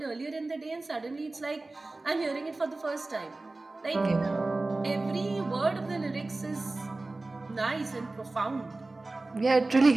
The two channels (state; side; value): quieter; left; 3.2 dB